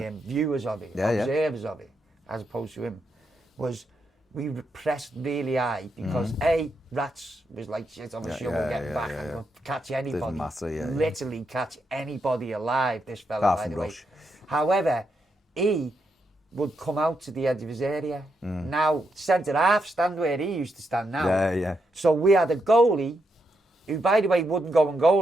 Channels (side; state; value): both; normal; correlation 0.82